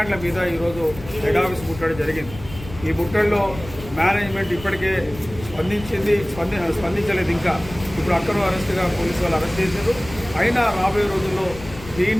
మీద ఈరోజు హెడ్ ఆఫీస్ ముట్టడి జరిగింది. ఈ ముట్టడిలో మేనేజ్మెంట్ ఇప్పటికే స్పందించలేదు. ఇంకా ఇప్పుడు అక్కడ అరెస్ట్గా పోలీసు వాళ్ళు అరెస్ట్ చేశారు. అయినా రాబోయే రోజుల్లో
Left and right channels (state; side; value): noise; left; rumble, 15 dB below the sound